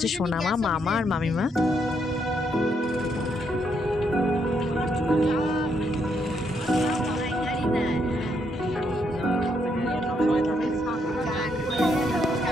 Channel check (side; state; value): both; normal; correlation 0.75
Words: সোনামা, মামা আর মামিমা।